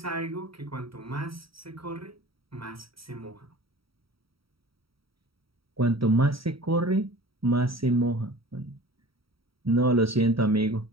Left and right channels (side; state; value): left; late; 0.75 ms